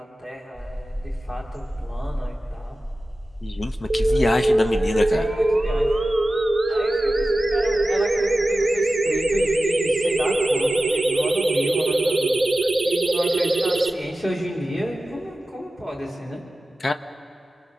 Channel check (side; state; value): both; normal; correlation 0.95